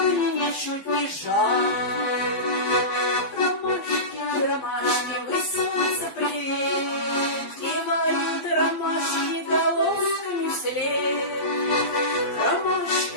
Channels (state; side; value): late; right; 12 ms